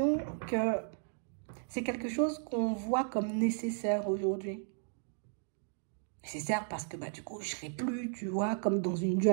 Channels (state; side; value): silent; left; 55 dB below the other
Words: que c'est quelque chose qu'on voit comme nécessaire aujourd'hui. Nécessaire parce que du coup, je ne serai plus, tu vois, comme dans une